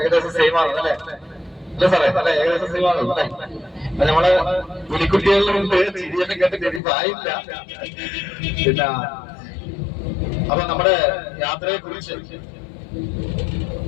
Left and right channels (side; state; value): right; drops out; at 6.8 s